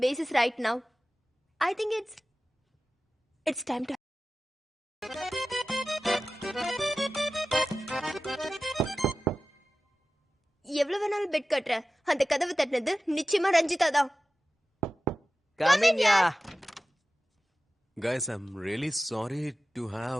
basis right now? I think it's time to. எவ்வளவு வேணாலும் பெட் கட்டுற, அந்த கதவு தட்டினது நிச்சயமா ரஞ்சிதா தான். Come in, yeah. Guys, I'm really sorry to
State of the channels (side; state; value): both; normal; correlation 0.95